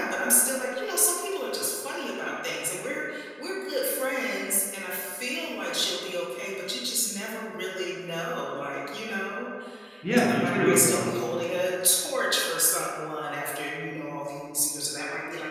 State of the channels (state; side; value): identical; both; correlation 1.00